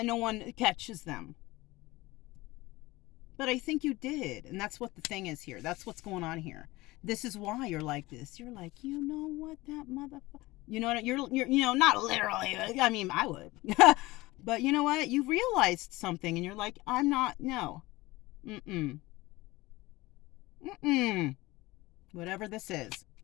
no one catches them. But I think you did, and that's what the thing is here. That's what's going on here. This is why you're like this. You're like, you know what, that motherfucker. You know what? You're you know, not literally. I mean, I would. But you know what? You realized something, and you're like, I'm not. No. Mm-mm. Mm-mm. Whatever this is,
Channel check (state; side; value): quieter; right; 20.1 dB